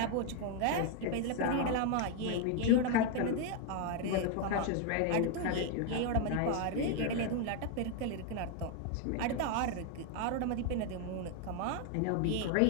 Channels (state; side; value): different; both; correlation 0.01